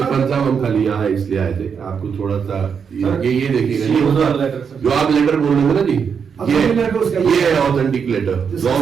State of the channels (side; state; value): left; quieter; 6.6 dB